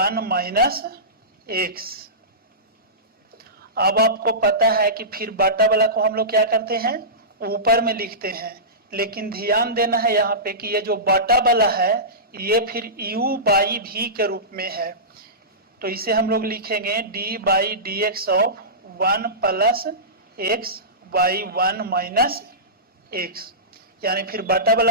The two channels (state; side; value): normal; both; correlation -0.20